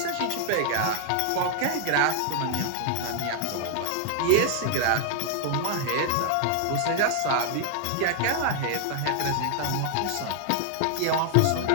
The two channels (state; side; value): different; both; correlation 0.00